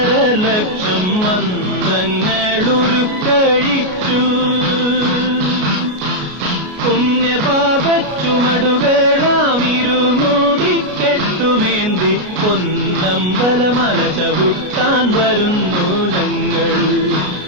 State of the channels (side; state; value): left; late; 33 ms